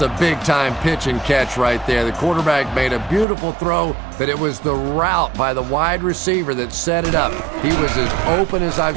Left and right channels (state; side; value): drops out; left; at 3.2 s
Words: big-time pitch and catch right there. The quarterback made a beautiful throw, but it was the route by the wide receiver that set it up. He was as open as I've